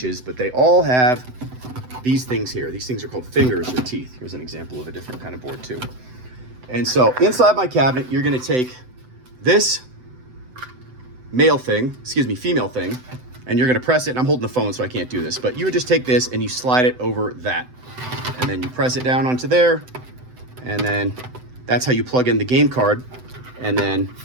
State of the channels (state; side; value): late; left; 7.9 ms